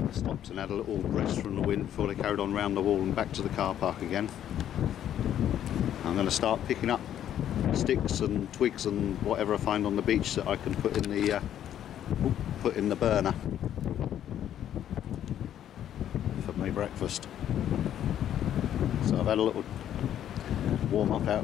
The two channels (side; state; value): right; quieter; 10.7 dB